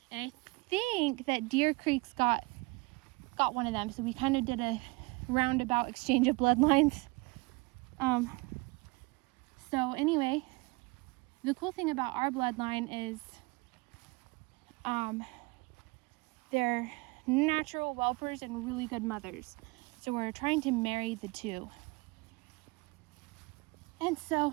And I think that Deer Creek's got one of them. So we kind of did a roundabout exchange of bloodlines. So anyway, the cool thing about our bloodline is they're natural whelpers and really good mothers. So we're trying to marry the two. And so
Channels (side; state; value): left; quieter; 25.8 dB